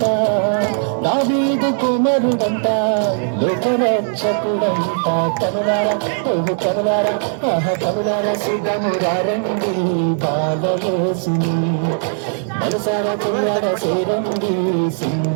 దావీదు కుమారుడంట, లోకరక్షకుడంట. కనులారా ఓహు కనులారా ఆహ కనులారా సిద్ధమురారండి బాలయేసుని, మనసారా కొనులారా చేరండి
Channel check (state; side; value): silent; left; digital silence